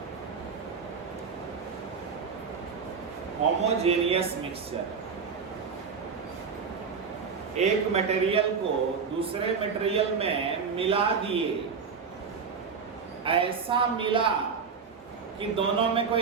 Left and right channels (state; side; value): quieter; left; 5.8 dB